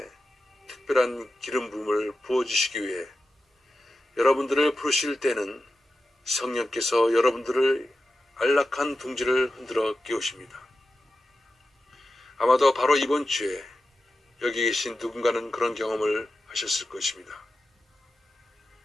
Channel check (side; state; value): both; normal; correlation 0.92